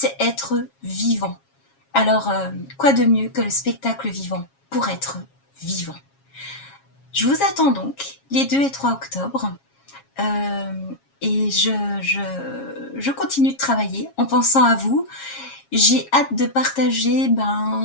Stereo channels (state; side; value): late; right; 7.3 ms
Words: être vivant. Alors, quoi de mieux que le spectacle vivant pour être vivant? Je vous attends donc les 2 et 3 octobre. Et je continue de travailler en pensant à vous. J'ai hâte de partager